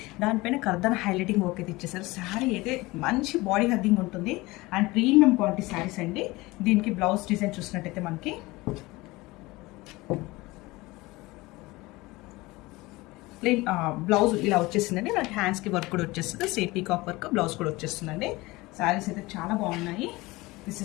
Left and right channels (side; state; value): right; quieter; 21.2 dB